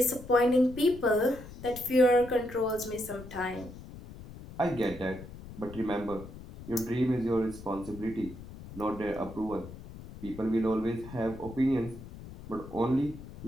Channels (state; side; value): noise; left; rumble, 15 dB below the sound